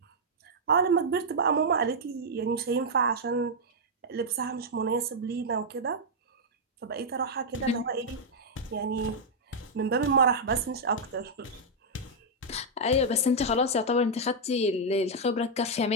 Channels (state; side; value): normal; both; correlation -0.04